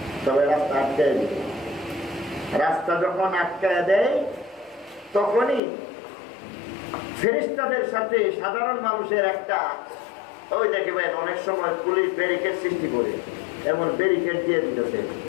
তবে রাস্তা আটকায় দিবে। রাস্তা যখন আটকায় দেয় তখনই ফেরেশতাদের সাথে সাধারণ মানুষের একটা, ওই দেখবেন অনেক সময় পুলিশ ব্যারিকেড সৃষ্টি করে এমন ব্যারিকেড দিয়ে দিতেছে।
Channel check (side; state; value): right; drops out; at 5.6 s